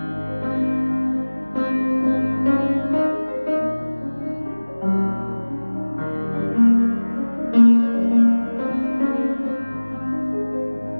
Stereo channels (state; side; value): inverted; both; correlation -1.00